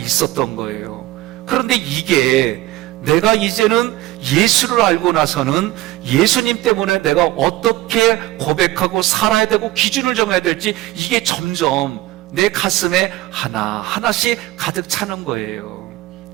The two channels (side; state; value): left; quieter; 16.8 dB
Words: 거예요. 그런데 이게 내가 이제는 예수를 알고 나서는 예수님 때문에 내가 어떻게 고백하고 살아야 되고 기준을 정해야 될지 이게 점점 내 가슴에 하나하나씩 가득 차는 거예요.